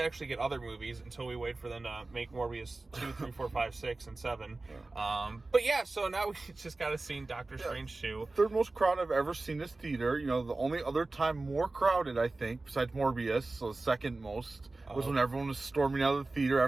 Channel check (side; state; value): left; quieter; 3.3 dB